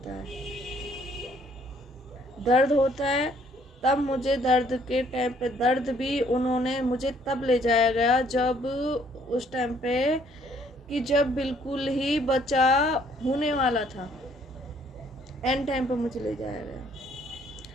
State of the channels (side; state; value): both; normal; correlation 0.63